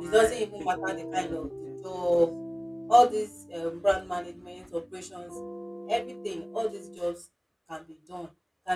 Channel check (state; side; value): identical; both; correlation 1.00